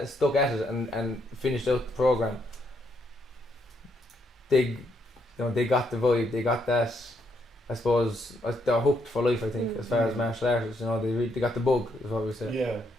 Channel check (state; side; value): normal; both; correlation 0.75